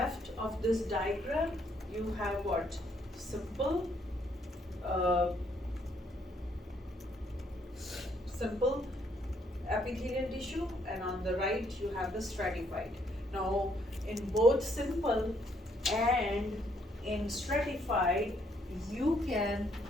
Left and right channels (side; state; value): both; normal; correlation 0.70